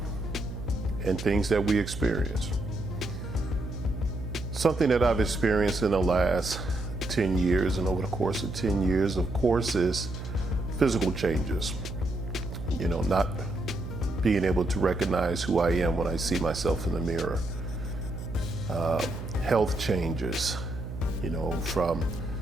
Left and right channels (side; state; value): right; noise; hum, 8 dB below the sound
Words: and things that we experience. Something that I've experienced in the last 10 years and over the course of 10 years, of course, is physical changes. You know, not being able to recognize who I am when I see myself in the mirror. Health changes, you know, from